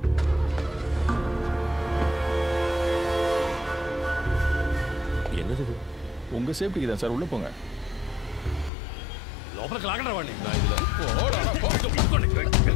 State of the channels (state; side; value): drops out; right; at 8.7 s